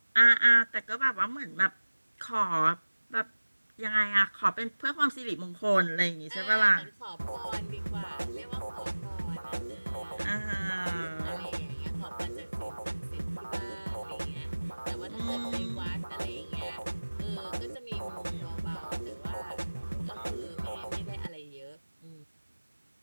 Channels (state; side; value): inverted; both; correlation -1.00